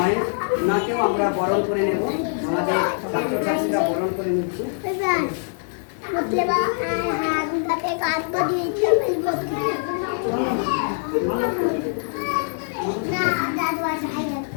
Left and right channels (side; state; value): right; silent; digital silence